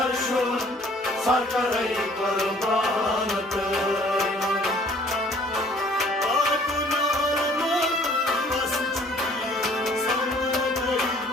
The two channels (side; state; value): both; normal; correlation 0.56